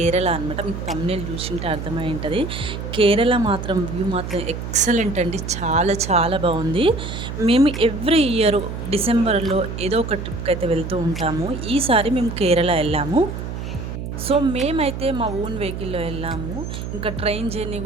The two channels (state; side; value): noise; right; hum, 6 dB below the sound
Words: అనమాట. మీకు thumbnail చూసింటే అర్థమై ఉంటది. కేరళ మాత్రం వ్యూ మాత్రం ఎక్సలెంట్ అండి. చాలా చాలా బాగుంది. మేము ఎవ్రీ ఇయర్ డిసెంబర్‌లో ఏదో ఒక ట్రిప్‌కైతే వెళ్తూ ఉంటాము. ఈసారి మేము కేరళ ఎళ్ళాము. సో మేమైతే మా ఓన్ వెహికల్‌లో ఎళ్ళాము. ఇంకా ట్రైన్ జర్నీ